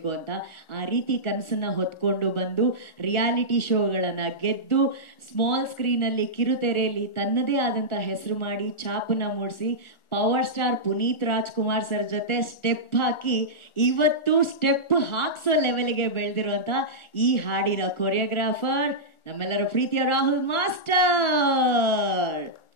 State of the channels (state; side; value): late; right; 1.4 ms